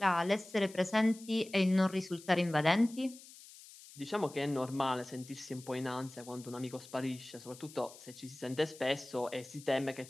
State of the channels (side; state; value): left; noise; hiss, 19 dB below the sound